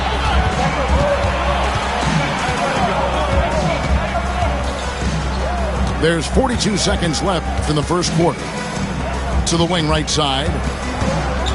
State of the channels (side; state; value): both; identical; correlation 1.00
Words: There's 42 seconds left in the first quarter. To the wing right side.